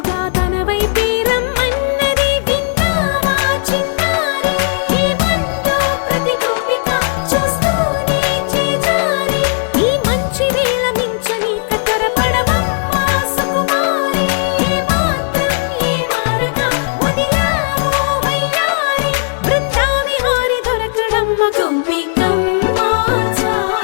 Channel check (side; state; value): right; silent; digital silence